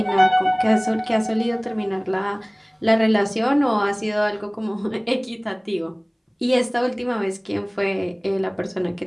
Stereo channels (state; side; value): identical; both; correlation 1.00